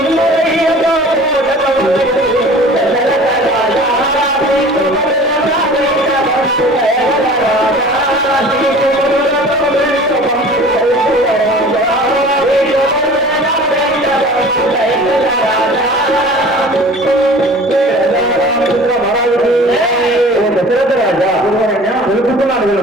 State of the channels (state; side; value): normal; both; correlation 0.44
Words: దశరథ రాజా తెలుపుతున్నాను